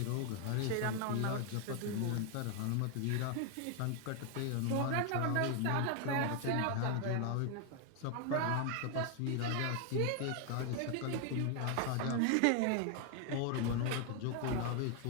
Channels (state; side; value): different; both; correlation 0.00